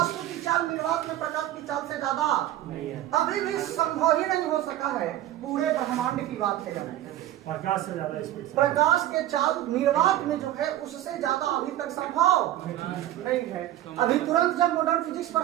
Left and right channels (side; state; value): left; quieter; 13.5 dB